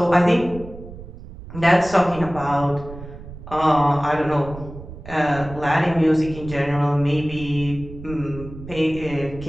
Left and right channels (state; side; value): noise; right; rumble, 14 dB below the sound